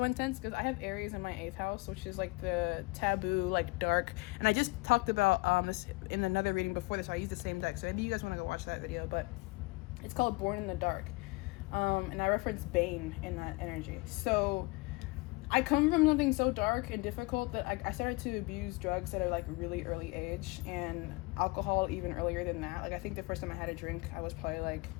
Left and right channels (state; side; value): quieter; right; 24.9 dB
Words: intense, because I have Aries in my 8th house, which is like the taboo, like dark, and I just talked about this in another reading before this, so I used the same deck, so maybe you guys want to go watch that video, but it's called Born in the Dark, and I reference Bane in that energy. So I come from something so dark and difficult that I started to abuse drugs at a like really early age, and alcohol even earlier than that. Like I think the first time I had a drink, I was probably like